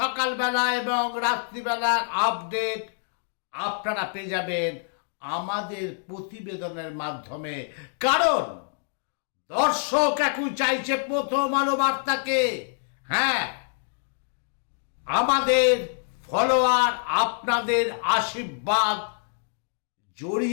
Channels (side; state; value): right; silent; digital silence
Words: এবং রাত্রিবেলার আপডেট আপনারা পেয়ে যাবেন আমাদের প্রতিবেদনের মাধ্যমে। কারণ দর্শক এখন চাইছে প্রথম আলো বার্তাকে। হ্যাঁ, আমাদের ফলোয়ার, আপনাদের আশীর্বাদ